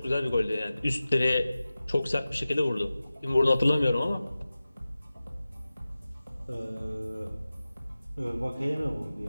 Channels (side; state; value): both; inverted; correlation -0.96